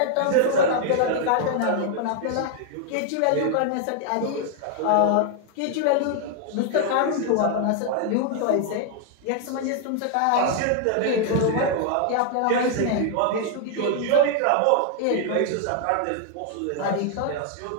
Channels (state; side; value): different; both; correlation 0.00